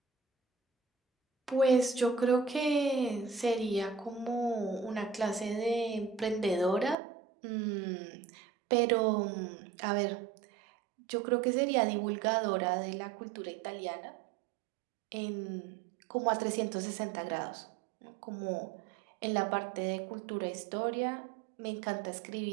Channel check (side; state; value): left; drops out; at 7.0 s